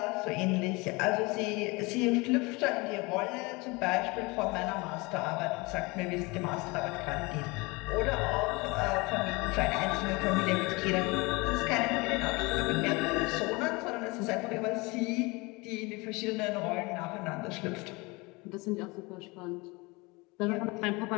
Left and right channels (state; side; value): quieter; right; 25.4 dB